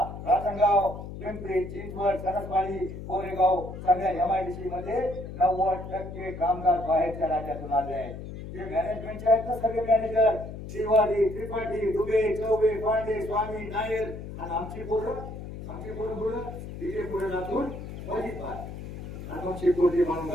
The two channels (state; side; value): noise; left; hum, 10 dB below the sound